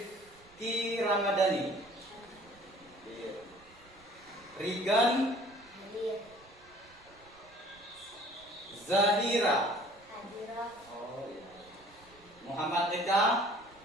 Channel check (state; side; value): noise; right; rumble, 26 dB below the sound